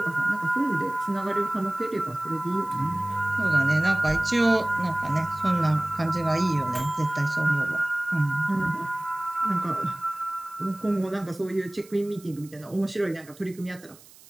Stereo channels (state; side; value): noise; right; hiss, 23 dB below the sound